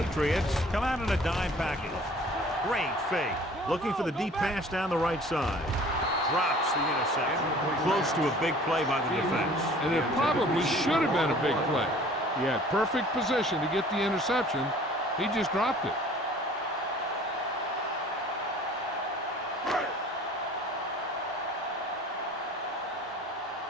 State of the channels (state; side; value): normal; both; correlation 0.49